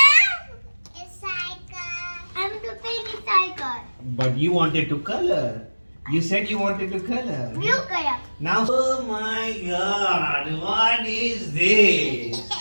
it's cycle. I'm the baby cycle. But you wanted to color. You said you wanted to color. Blue color. Now, oh my God, what is this?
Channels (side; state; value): both; inverted; correlation -1.00